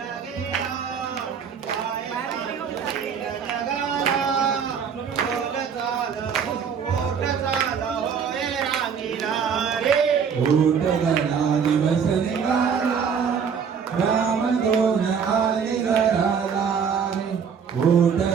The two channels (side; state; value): left; quieter; 6.8 dB